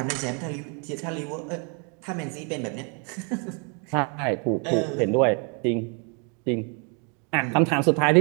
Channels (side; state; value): left; quieter; 36.7 dB